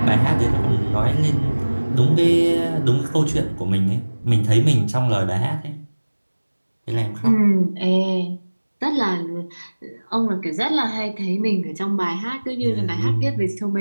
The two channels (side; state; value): both; inverted; correlation -1.00